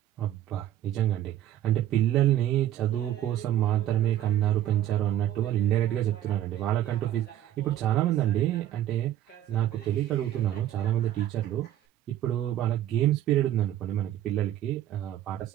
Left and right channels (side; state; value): left; quieter; 12.2 dB